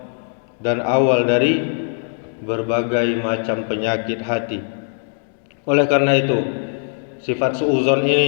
dan awal dari berbagai macam penyakit hati. Oleh karena itu, sifat suuzon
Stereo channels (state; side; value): silent; right; digital silence